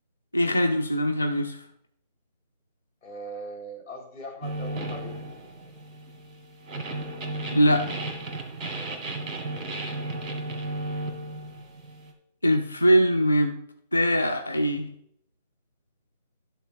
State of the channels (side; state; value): both; inverted; correlation -0.84